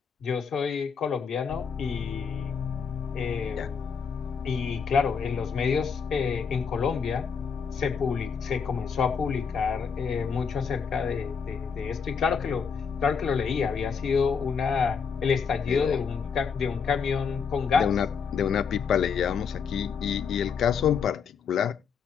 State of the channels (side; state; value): right; quieter; 6.2 dB